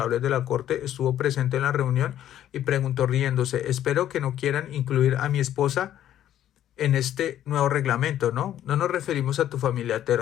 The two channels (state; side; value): quieter; right; 11.6 dB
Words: de la corte, estuvo presente en la reunión y preguntó riéndose: espero que no quieran incluir a mi esposa en este nuevo reglamento, ¿no? No nos referimos a tu familia,